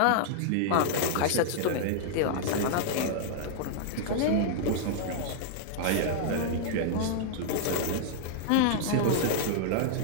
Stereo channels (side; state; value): both; different; correlation -0.01